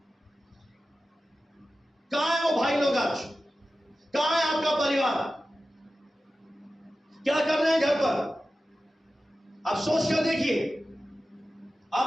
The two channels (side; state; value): both; normal; correlation 0.94